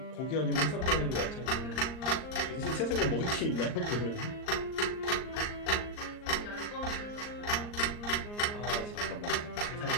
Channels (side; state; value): right; late; 39 ms